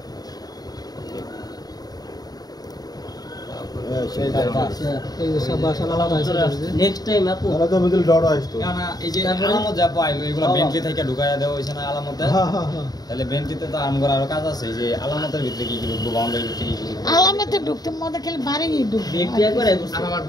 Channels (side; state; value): right; late; 0.19 ms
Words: দাও। এই যে সব বাসা আলাদা আছে নেক্সট টাইম আপু কেননা এই যে আলামত যা পাইলো এগুলো বেন্টলি থেকে ঢুকাইয়া দেওয়া হয়েছে না আলামতে, হ্যাঁ হ্যাঁ হ্যাঁ তাহলে বেন্টলিতে তো আমগর আরো কাজ আছে, এই যে আলামতের ভিতরে কি কি ঢুকবো, বাউন্ডারির ভিতরে কি কি ঢুকবো, আলামতে ঢুকতে মধ্যে খালি বাড়ি ঢুকবে ব্যক্তি একবার আর আমার